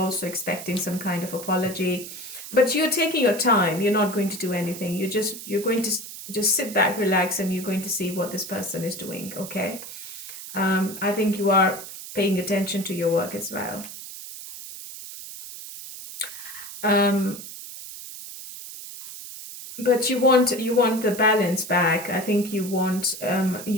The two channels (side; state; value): right; noise; hiss, 11 dB below the sound